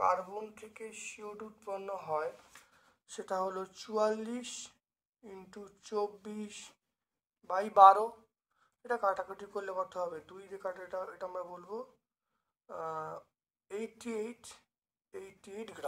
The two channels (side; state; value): both; identical; correlation 1.00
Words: থেকে CO2 উৎপন্ন হয়, সেটা হলো 44 ইন্টু 24/12। এটা কাটাকাটি করলে কত হবে, 2 দিয়ে কাটা, এটা আমরা বলবো 88